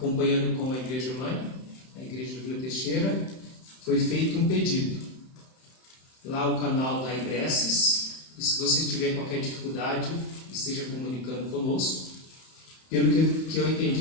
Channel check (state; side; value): late; right; 31 ms